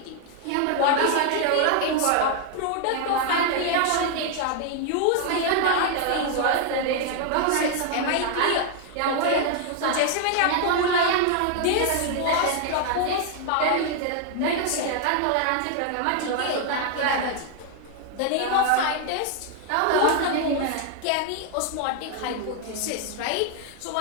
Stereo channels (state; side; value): different; both; correlation 0.00